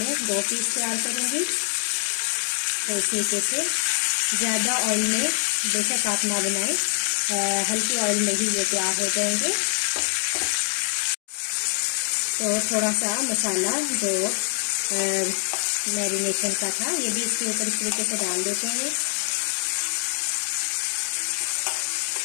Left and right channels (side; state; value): right; silent; 62 dB below the other